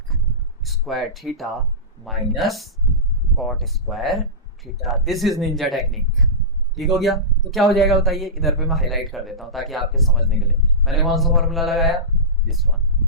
square theta minus cot square theta. This is ninja technique, ठीक हो गया। तो क्या हो जाएगा बताइए, इधर पे मैं हाईलाइट कर देता हूं ताकि आपके समझने के लिए। मैंने कौन सा फॉर्मूला लगाया, दिस वन,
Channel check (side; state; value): both; normal; correlation -0.18